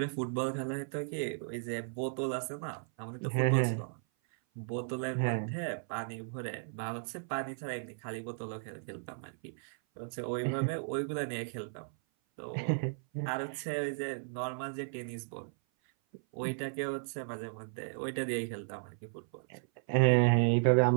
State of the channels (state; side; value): silent; left; 55 dB below the other